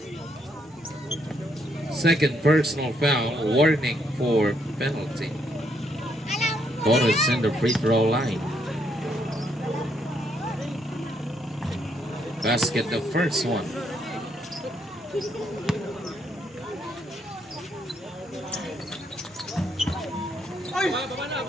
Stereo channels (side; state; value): both; normal; correlation 0.73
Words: Second personal foul, warning for penalty. Torres in the free throw line. Basket, the first one.